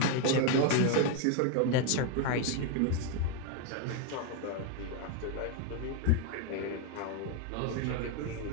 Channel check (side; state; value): both; different; correlation 0.01